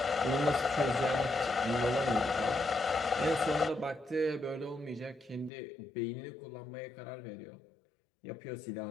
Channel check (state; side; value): drops out; right; at 5.5 s